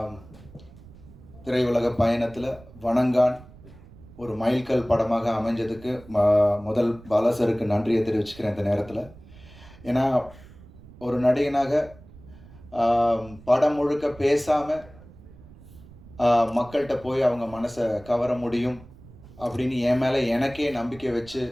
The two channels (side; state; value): right; noise; rumble, 21 dB below the sound